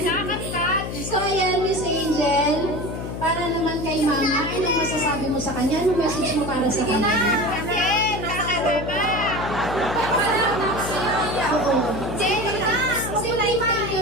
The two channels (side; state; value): left; noise; hum, 6 dB below the sound